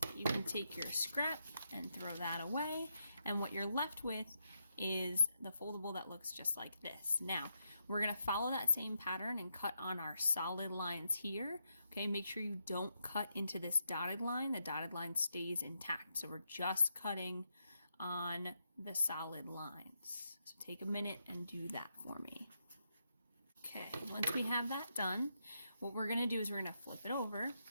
you can take your scrap and throw that away, and what you're left with is the foldable that looks just like this. Now, we're going to follow that same pattern and cut on our solid lines here. Okay, make sure you don't cut into this dotted line. The dotted line stays intact, so we're just cutting on the solid lines. So take a minute and do that for me. Okay, once we have that done, what we're going to do is we're going to flip it over,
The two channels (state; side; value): inverted; both; correlation -0.82